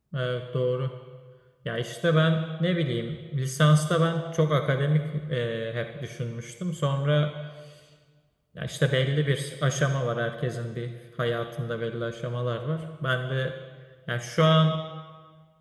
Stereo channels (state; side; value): identical; both; correlation 1.00